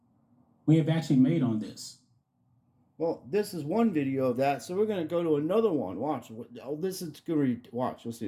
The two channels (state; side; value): identical; both; correlation 1.00